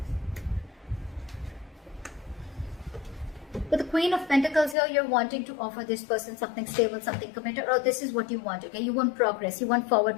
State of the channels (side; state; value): right; drops out; at 4.8 s